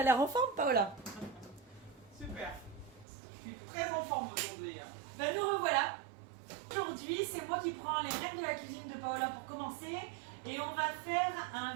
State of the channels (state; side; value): drops out; left; at 3.1 s